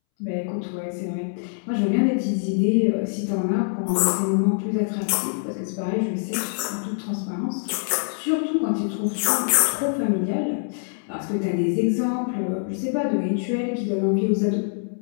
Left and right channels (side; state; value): right; silent; 62 dB below the other